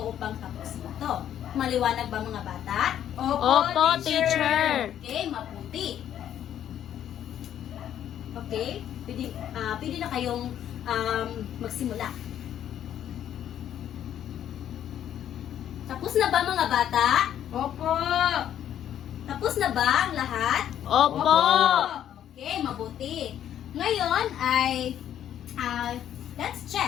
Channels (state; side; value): quieter; right; 10.5 dB